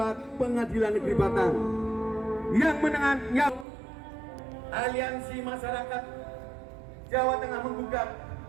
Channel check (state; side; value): drops out; left; at 3.7 s